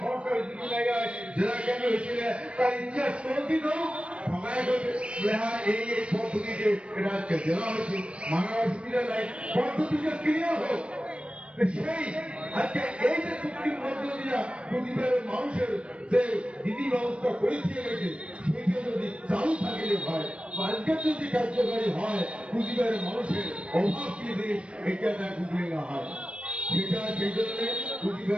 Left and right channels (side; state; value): left; late; 0.059 ms